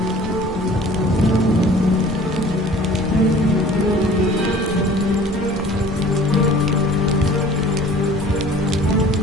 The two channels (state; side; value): normal; both; correlation 0.49